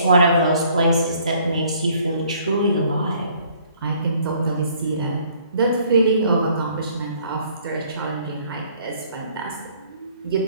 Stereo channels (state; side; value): inverted; both; correlation -0.60